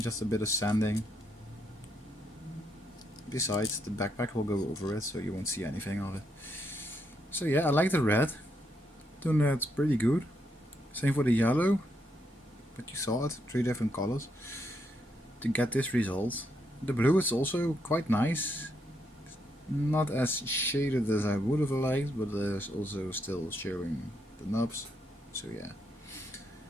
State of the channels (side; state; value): both; normal; correlation 0.78